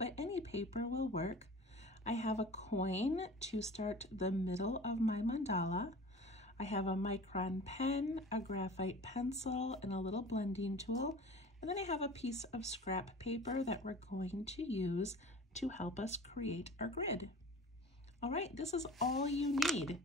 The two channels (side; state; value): both; normal; correlation 0.40